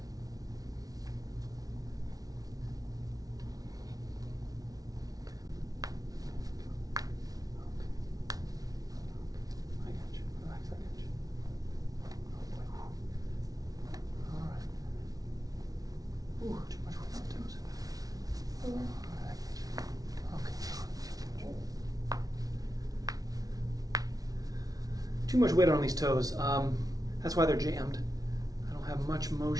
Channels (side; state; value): left; late; 0.18 ms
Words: I got you. Relax, I got you. Oh boy. All right. Ooh, too much weight on the toes. All right, I got you. Okay. Too much weight on these toes. That's why they're jammed. I don't have much